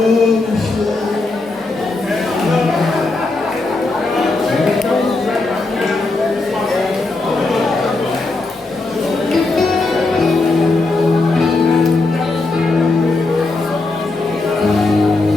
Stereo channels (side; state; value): right; quieter; 3.3 dB